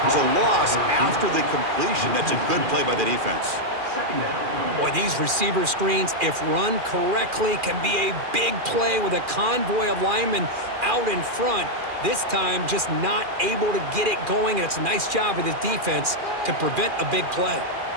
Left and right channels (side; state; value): left; late; 2.4 ms